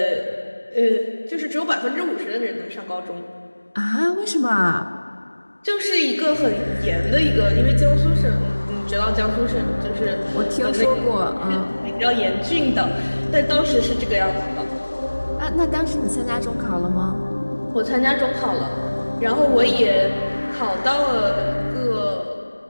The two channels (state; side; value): inverted; both; correlation -1.00